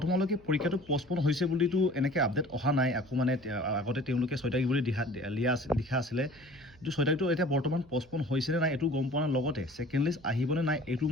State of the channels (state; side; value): noise; right; hum, 25 dB below the sound